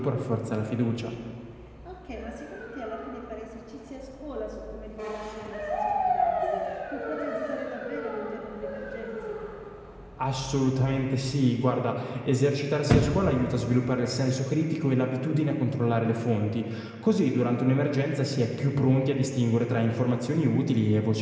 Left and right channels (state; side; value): identical; both; correlation 1.00